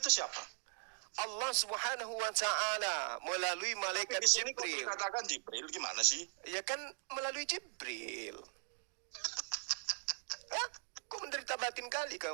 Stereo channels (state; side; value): silent; left; digital silence